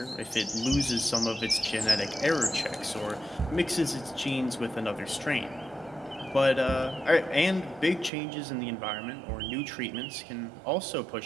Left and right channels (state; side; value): drops out; left; at 8.1 s